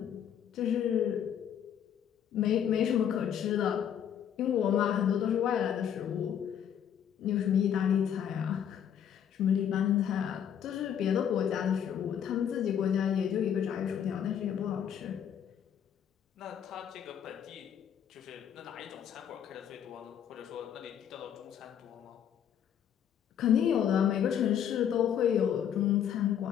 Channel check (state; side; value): quieter; right; 9.1 dB